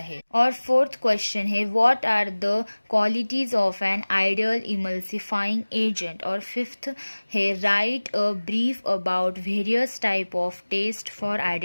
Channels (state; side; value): inverted; both; correlation -1.00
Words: और फोर्थ क्वेश्चन है what are the qualities of an ideal emulsifying agent. और फिफ्थ है write a brief about various type of test for